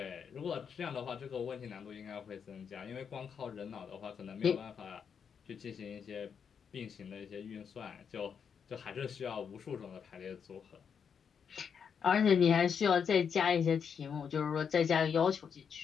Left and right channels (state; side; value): quieter; right; 7.0 dB